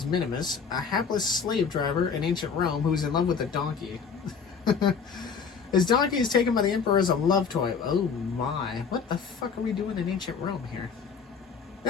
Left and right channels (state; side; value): quieter; right; 6.0 dB